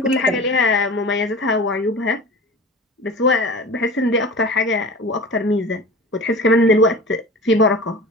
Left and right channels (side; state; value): both; normal; correlation 0.36